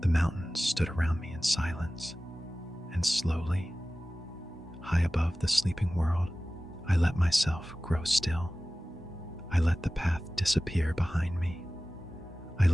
mountains stood around me in silence, and slowly, high above the sleeping world, I let myself grow still. I let the path disappear behind me. I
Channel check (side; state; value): both; normal; correlation 0.96